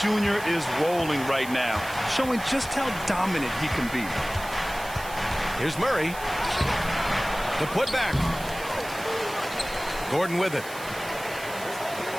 Jr. is rolling right now, showing just how dominant he can be. Here's Murray. The putback. Gordon with it.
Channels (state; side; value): noise; right; hiss, 14 dB below the sound